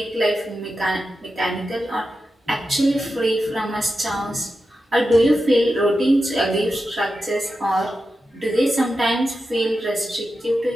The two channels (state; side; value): normal; both; correlation 0.90